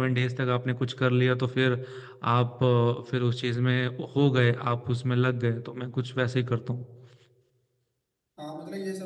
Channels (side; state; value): both; identical; correlation 1.00